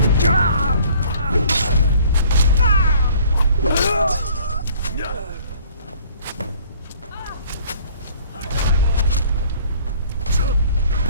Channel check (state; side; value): inverted; both; correlation -0.54